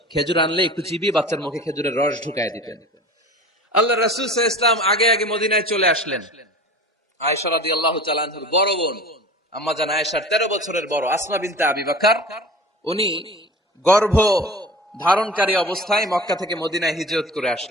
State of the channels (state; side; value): normal; both; correlation 0.38